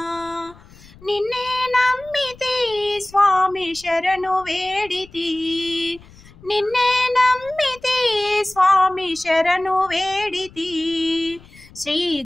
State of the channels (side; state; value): left; noise; rumble, 23 dB below the sound